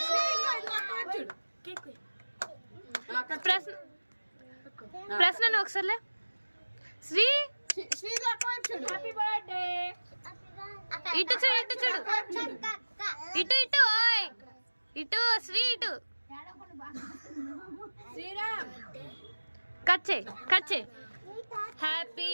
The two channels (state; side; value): inverted; both; correlation -1.00